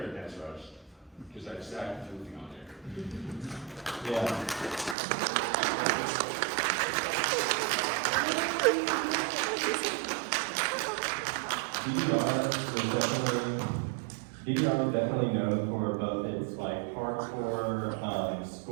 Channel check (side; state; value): left; drops out; at 5.0 s